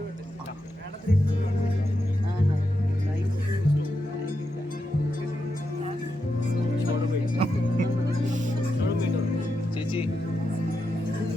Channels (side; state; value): both; normal; correlation 0.86